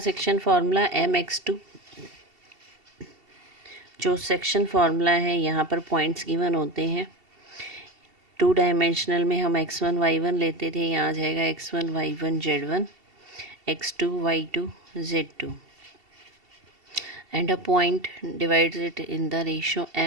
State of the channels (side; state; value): left; late; 2.7 ms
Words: सेक्शन फार्मूला? mx2। जो सेक्शन फार्मूला है यहाँ पर पॉइंट्स गिवन होते हैं। 2 डायमेंशनल में हम x1 y1 लेते थे, यहाँ आ जाएगा x1 y1 z1, x2 y2 z2, and a point divides it in the ratio